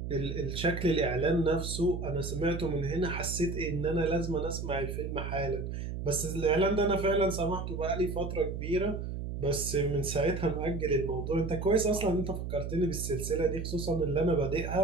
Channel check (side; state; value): right; noise; hum, 5 dB below the sound